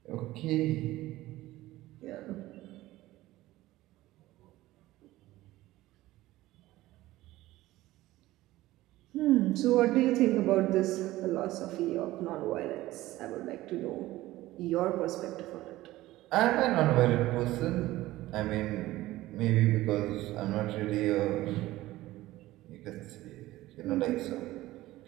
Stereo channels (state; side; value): quieter; left; 16.9 dB